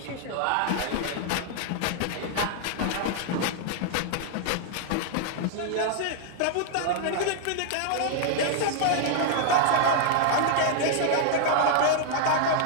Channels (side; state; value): both; different; correlation 0.00